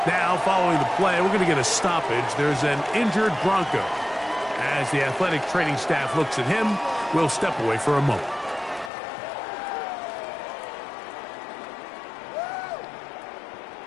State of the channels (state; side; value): drops out; right; at 8.9 s